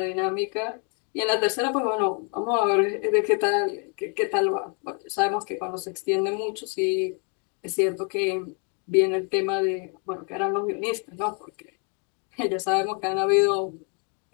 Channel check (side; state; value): right; quieter; 38.6 dB